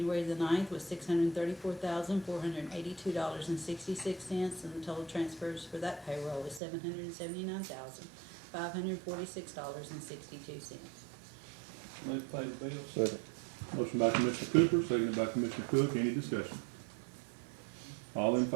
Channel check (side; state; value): left; drops out; at 6.6 s